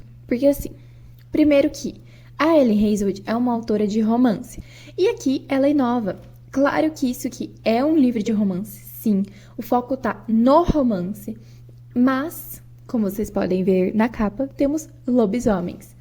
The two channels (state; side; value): identical; both; correlation 1.00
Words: porque assim, primeiro que a Ellie Hazelwood é uma autora de romance, e aqui ela inova. Claro que isso aqui é um livro de romance, sim, o foco tá no romance, mas, como vocês podem ver na capa, temos lobisomens,